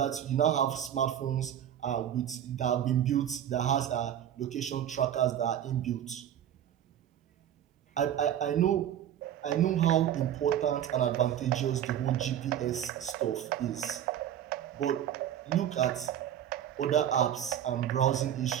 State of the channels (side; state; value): left; quieter; 10.4 dB